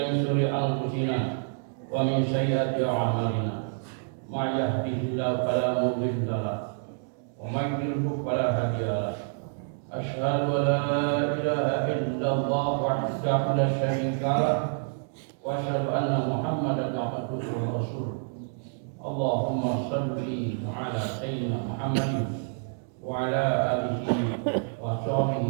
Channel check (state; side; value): silent; left; digital silence